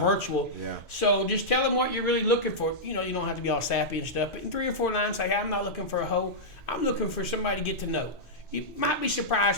So just tell them what you're really looking for. You know, you don't have to be all sappy and stuff, but in 3 or 4 lines, say, hey, I'm not looking for a hoe. I'm looking for somebody to get to know. You might be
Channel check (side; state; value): both; normal; correlation -0.11